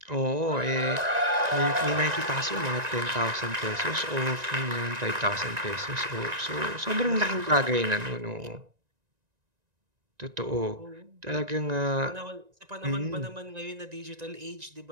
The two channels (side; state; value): left; late; 1.9 ms